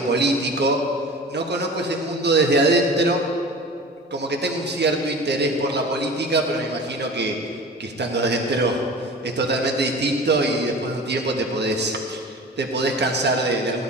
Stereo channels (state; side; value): normal; both; correlation 0.37